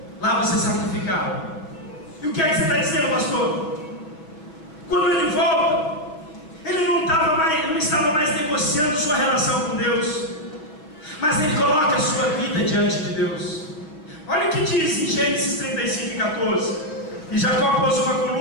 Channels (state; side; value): late; right; 6.3 ms